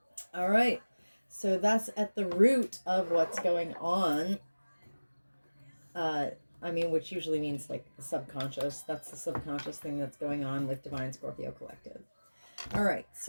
All right. So that's at the root of what's going on. Which usually means like the subconscious. That's the subconscious thing that's going on with Divine Scorpio Collective. All right.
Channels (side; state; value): both; inverted; correlation -1.00